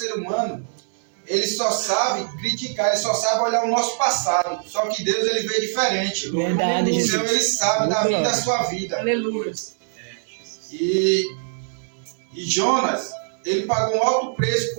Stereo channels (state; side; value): silent; left; 60 dB below the other